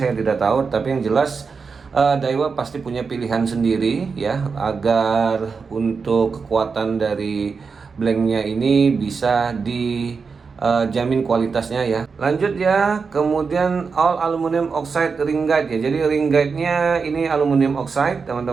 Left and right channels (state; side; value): quieter; left; 5.1 dB